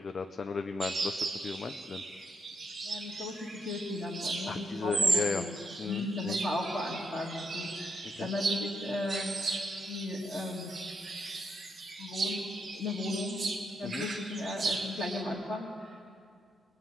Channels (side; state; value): both; normal; correlation 0.79